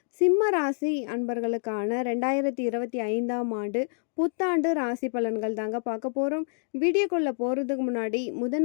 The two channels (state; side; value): silent; right; digital silence